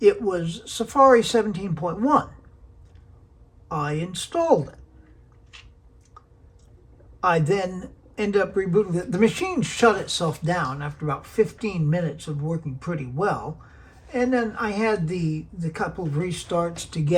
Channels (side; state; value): both; identical; correlation 1.00